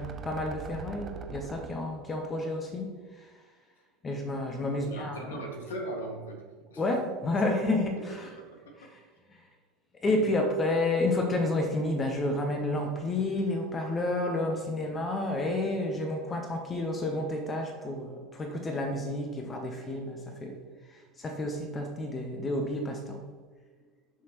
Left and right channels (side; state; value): both; normal; correlation 0.46